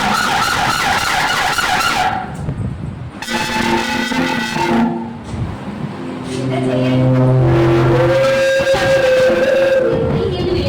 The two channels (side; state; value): both; identical; correlation 1.00